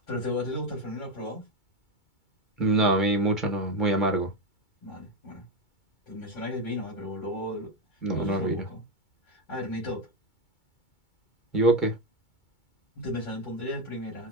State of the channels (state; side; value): late; right; 2.2 ms